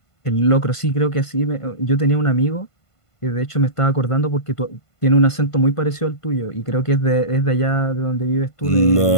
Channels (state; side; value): late; right; 1.5 ms